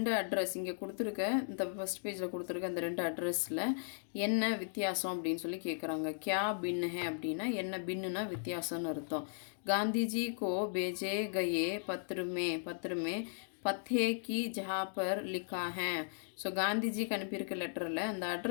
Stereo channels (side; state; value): right; silent; digital silence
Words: அட்ரஸ் இங்கே கொடுத்துருக்க, இந்த ஃபஸ்ட் பேஜில் கொடுத்துருக்க இந்த 2 அட்ரஸில் என்ன வித்தியாசம் அப்படின்னு சொல்லி கேட்குறாங்க. கியா பின் ஹே அப்படின்னா என்ன, பின்னுனா வித்தியாசம்னு அர்த்தம். காந்திஜி கோ பேஜே கயே பத்ருமே பத்தே கி ஜஹா பர் லிக்கா ஹே. ஸோ காந்திஜிக்கு அனுப்பியிருக்க லெட்டரில் அந்த